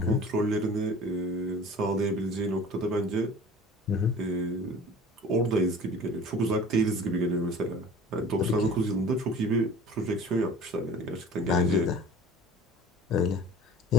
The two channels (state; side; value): normal; both; correlation 0.43